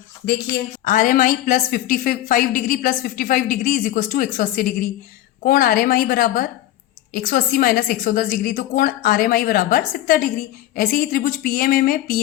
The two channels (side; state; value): right; quieter; 13.7 dB